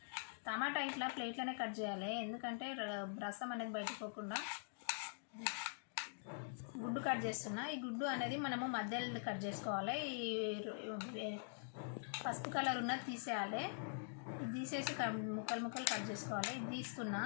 టమాటా ఇట్లా ప్లేట్లోనే కట్ చేయాలి, ఎందుకంటే రసం అనేది బయటకు పోకుండా. గుడ్డు కట్ చేస్తున్నా. ఈ గుడ్డు అనేది మనము మధ్యలో కట్ చేసుకోవాలి. ఈ పసుపు కలర్ ఉన్నది తీసేయాలి. ఇది తీసేసి ముక్కలు కట్ చేసుకోవాలి. ఇది తీస్తున్నా.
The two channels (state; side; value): silent; right; digital silence